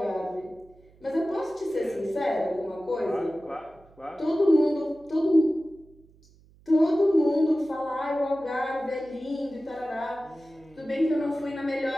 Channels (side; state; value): right; noise; hum, 28 dB below the sound